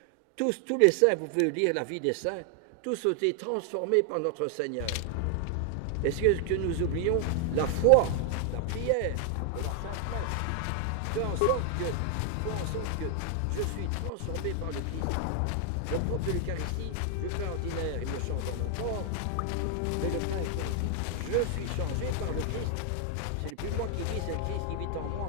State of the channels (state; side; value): different; both; correlation 0.00